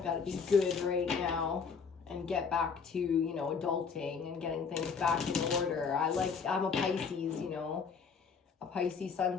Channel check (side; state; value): right; quieter; 5.7 dB